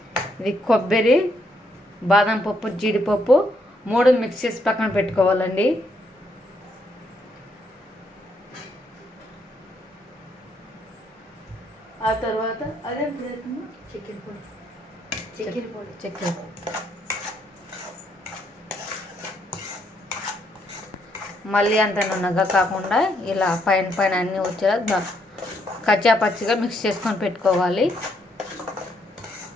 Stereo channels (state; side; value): normal; both; correlation 0.74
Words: ఇది కొబ్బరి, బాదం పప్పు, జీడిపప్పు 3 మిక్స్ చేసి పక్కన పెట్టుకోవాలండి. ఆ తర్వాత అదే చక్కెర పొడి. మళ్ళీ అంత నున్నగా కాకుండా ఇలా పైన అన్నీ వచ్చేలా కచ్చా పచ్చిగా మిక్స్ చేసుకొని పెట్టుకోవాలి.